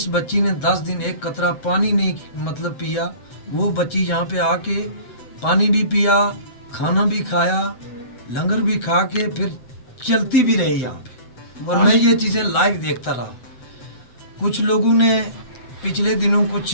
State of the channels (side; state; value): right; late; 8.0 ms